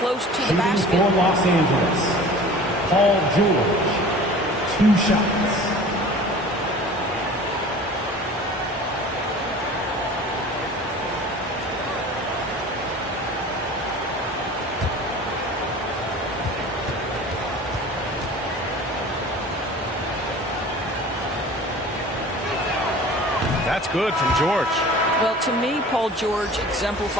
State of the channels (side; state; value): both; normal; correlation 0.42